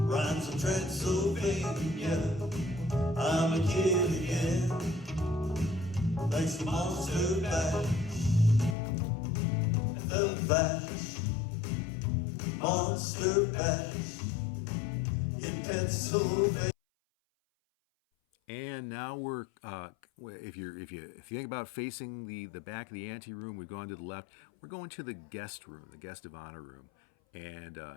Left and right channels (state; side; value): drops out; right; at 8.8 s